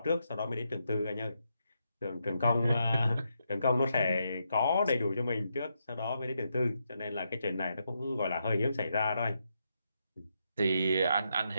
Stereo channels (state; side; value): inverted; both; correlation -0.82